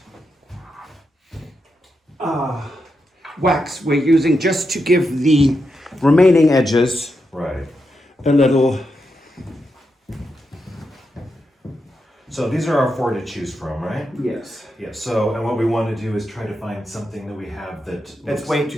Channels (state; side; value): normal; both; correlation 0.85